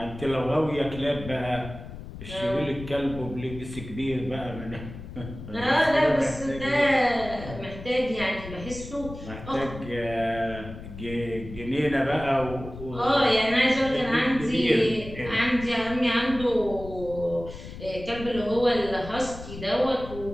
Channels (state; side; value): noise; left; rumble, 12 dB below the sound